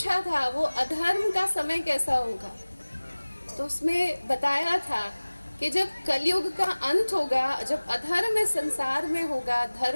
था वो अधर्म का समय कैसा होगा? तो उसमें बताया था कि जब कलयुग का अंत होगा, जब अधर्म इस संसार में होगा,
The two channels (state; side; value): inverted; both; correlation -1.00